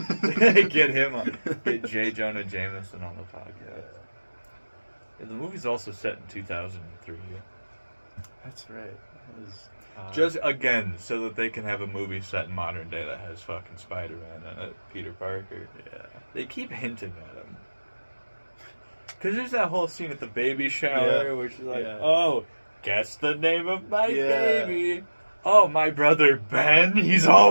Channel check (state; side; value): inverted; both; correlation -1.00